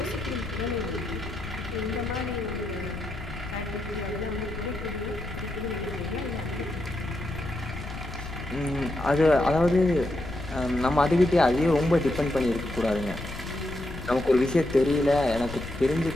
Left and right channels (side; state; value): left; noise; rumble, 10 dB below the sound